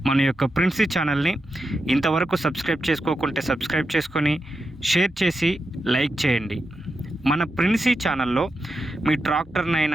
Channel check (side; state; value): both; normal; correlation 0.88